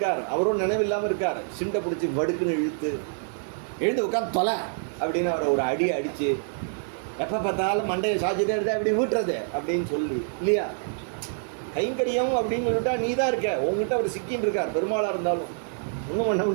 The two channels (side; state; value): left; silent; digital silence